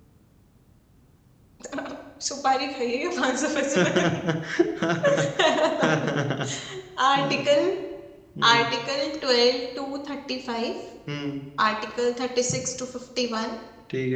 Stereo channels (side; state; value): both; identical; correlation 1.00